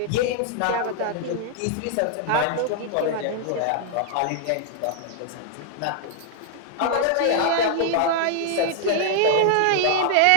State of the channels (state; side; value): different; both; correlation 0.00